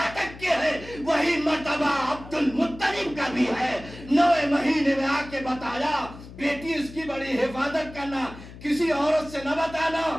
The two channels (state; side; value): noise; left; hum, 16 dB below the sound